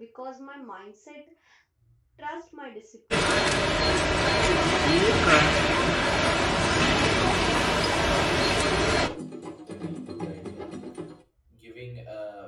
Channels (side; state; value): both; identical; correlation 1.00